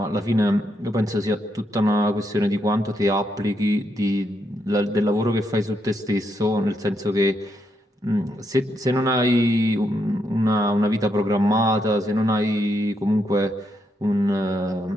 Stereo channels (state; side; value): normal; both; correlation 0.79